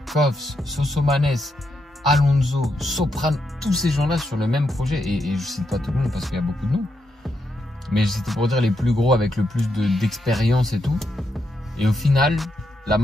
Koffs, Sosomanes, Alonso, Soprano, tous ces gens-là sur le même projet. Et je cite pas tout le monde parce qu'il y a beaucoup de noms. Mais c'était pour dire les plus gros avec le plus d'expérience et tout. Et au final, la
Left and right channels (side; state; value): both; normal; correlation 0.82